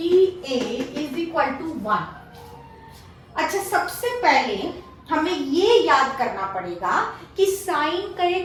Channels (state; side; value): identical; both; correlation 1.00